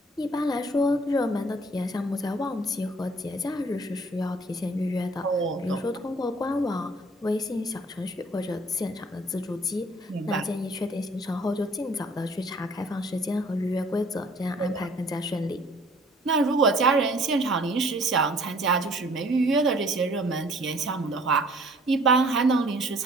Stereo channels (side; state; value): both; normal; correlation 0.56